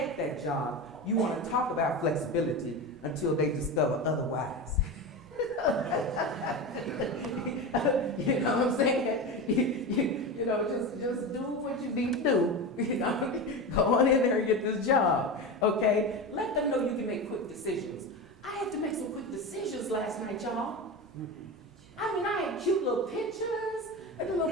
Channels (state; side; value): normal; both; correlation 0.23